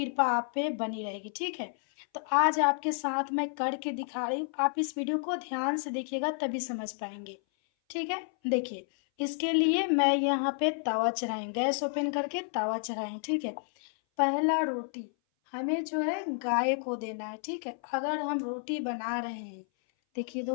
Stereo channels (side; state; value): right; silent; 57 dB below the other